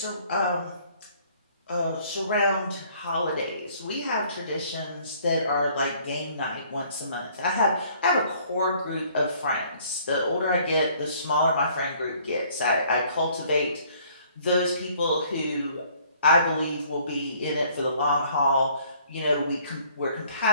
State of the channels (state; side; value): inverted; both; correlation -0.59